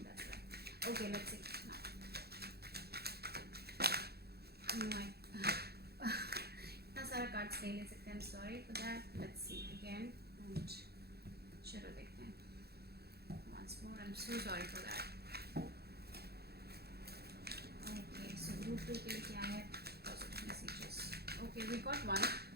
that's right. Okay, let's see now. इतना सारा कार्ड्स नहीं ले सकते. I am sorry for that. Let's see again. And चलो देखते हैं once more. I'm so sorry for that. Okay, so group 2 के लिए क्या है positive messages. Okay, we got 1.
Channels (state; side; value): late; left; 0.46 ms